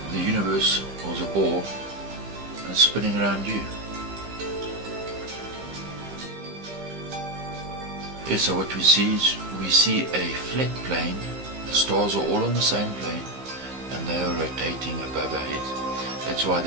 the universe was a ball and spinning around you. Yes, so what we see is we see a flat plane. The stars are all on the same plane and they are rotating above our heads. That's why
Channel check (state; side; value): late; left; 15 ms